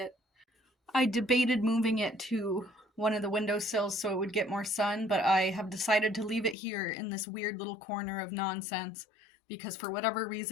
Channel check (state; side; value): drops out; right; at 6.6 s